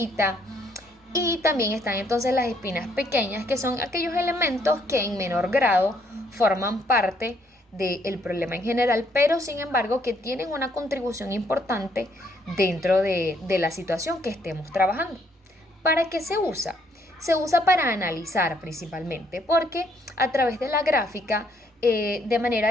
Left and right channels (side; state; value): both; normal; correlation 0.69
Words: Y también están entonces las espinas pequeñas, que son aquellos elementos que en menor grado forman parte del problema en general, pero sin embargo que tienen una contribución importante dentro de la situación que estemos trabajando. ¿Para qué se usa? Se usa para analizar principalmente, porque a través de la gráfica, de